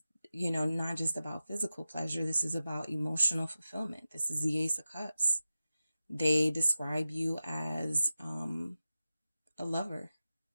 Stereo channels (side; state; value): both; inverted; correlation -0.94